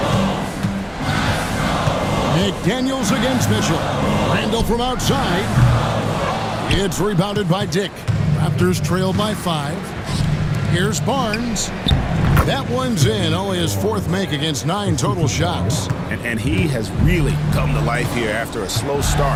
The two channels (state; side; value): identical; both; correlation 1.00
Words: McDaniels against Mitchell. Randall from outside. It's rebounded by Dick. Raptors trail by 5. Here's Barnes. That one's in. Only his 4th make against 9 total shots. And he has really come to life here after a slow